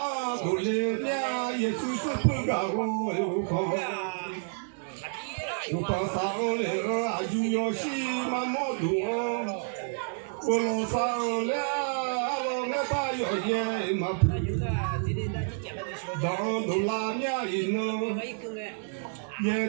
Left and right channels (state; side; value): silent; left; 58 dB below the other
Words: do le nya ye tu tu pu ga go u ko sa le a ju yo shi ma mo du o lo sa le a lo ne ba yo ye ma pu dans de la nya ino ye